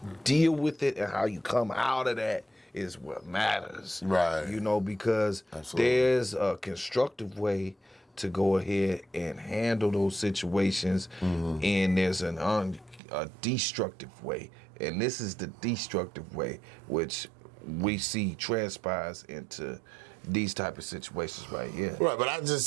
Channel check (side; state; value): left; drops out; at 13.0 s